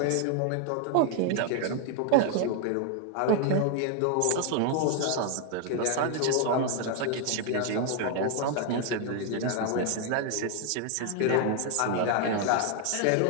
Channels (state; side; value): different; both; correlation 0.00